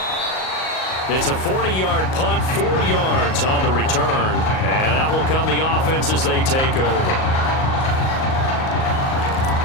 It's a 40-yard punt, 4 yards on the return. And out will come the offense as they take over.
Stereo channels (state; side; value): late; right; 38 ms